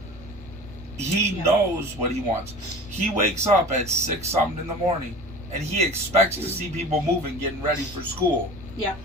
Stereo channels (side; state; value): both; normal; correlation 0.38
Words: He knows what he wants. He wakes up at 6 something in the morning and he expects to see people moving, getting ready for school. Yeah.